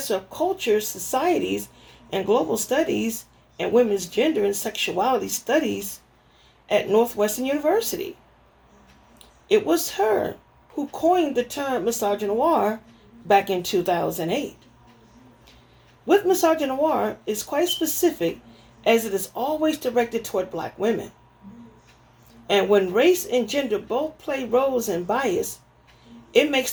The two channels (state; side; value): identical; both; correlation 1.00